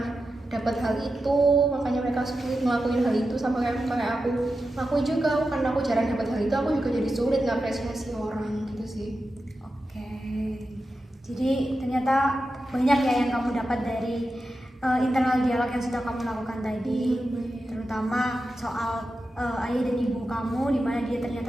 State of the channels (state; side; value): normal; both; correlation 0.90